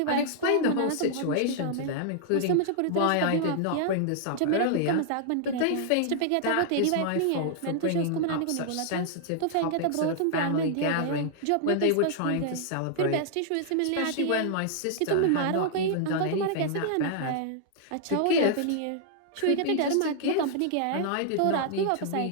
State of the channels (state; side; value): different; both; correlation -0.01